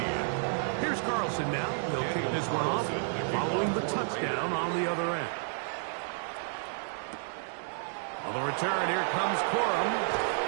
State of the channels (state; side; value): silent; left; digital silence